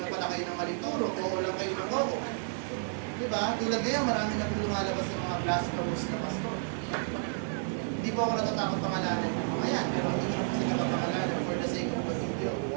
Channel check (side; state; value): left; silent; digital silence